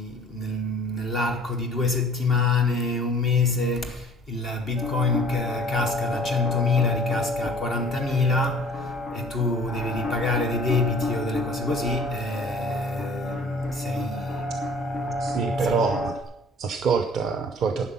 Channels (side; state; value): both; normal; correlation 0.50